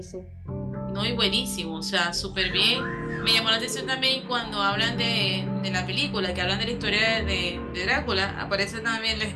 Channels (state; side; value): identical; both; correlation 1.00